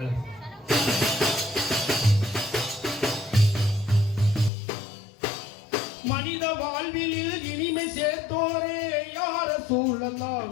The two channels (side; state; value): right; drops out; at 4.5 s